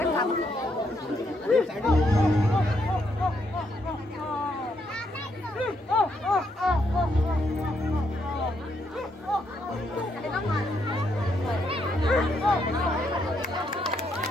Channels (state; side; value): normal; both; correlation 0.76